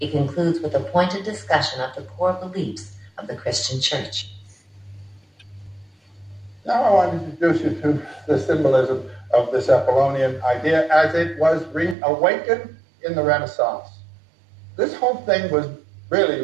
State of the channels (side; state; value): left; drops out; at 12.0 s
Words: concludes with a pointed discussion of the core beliefs of the Christian Church. Now I want to introduce you to the symbolism of this Apollonian idea as it was reawakened in the Renaissance. This whole thing was really